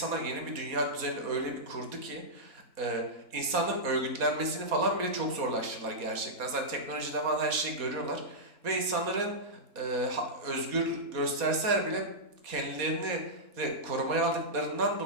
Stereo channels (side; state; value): left; late; 4.2 ms